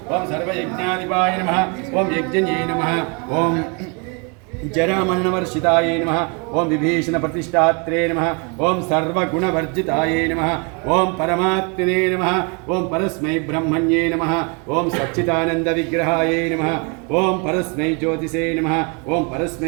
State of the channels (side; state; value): left; quieter; 33.7 dB